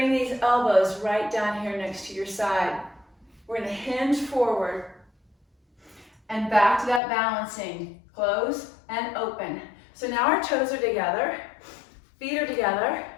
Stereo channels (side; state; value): right; drops out; at 7.0 s